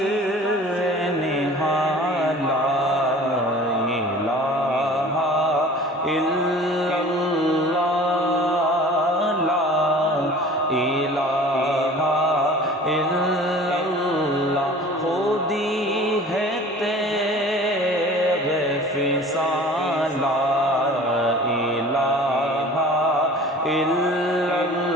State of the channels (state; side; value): normal; both; correlation 0.44